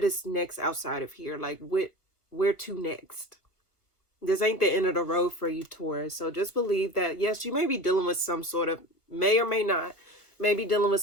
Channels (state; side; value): late; right; 1.4 ms